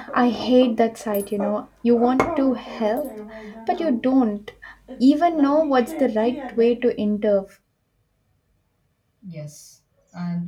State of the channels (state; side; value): identical; both; correlation 1.00